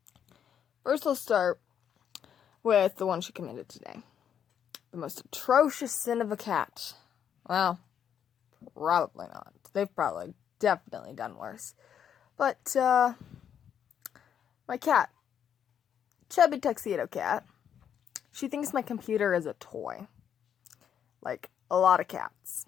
First, let's start with the one she committed today. The most atrocious sin of a cat. Well, probably not. They've probably definitely done worse. But, my cat, chubby tuxedo cat, she thinks my computer is a toy. Like a lot of cats.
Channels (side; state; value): right; quieter; 8.7 dB